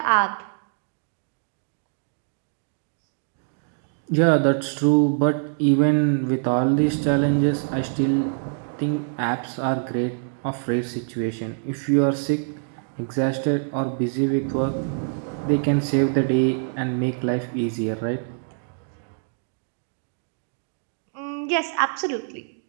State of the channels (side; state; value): left; silent; digital silence